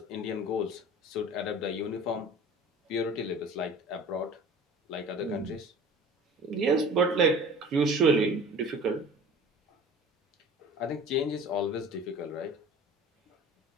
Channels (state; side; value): normal; both; correlation 0.42